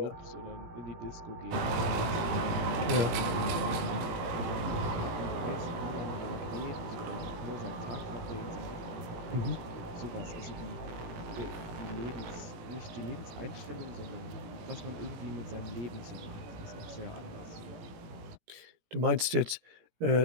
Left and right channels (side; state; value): left; late; 17 ms